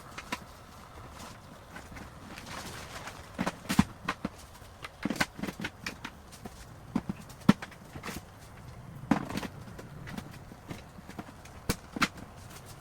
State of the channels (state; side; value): identical; both; correlation 1.00